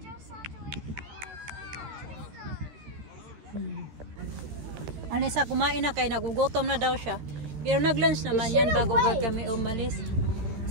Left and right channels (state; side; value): late; left; 13 ms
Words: just had to wait for Alisa, kumain na kay nagugutom na daw siya. Pero nag-lunch naman yan bago kami umalis.